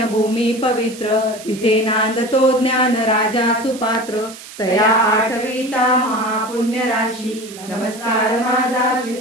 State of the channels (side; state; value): right; noise; hiss, 16 dB below the sound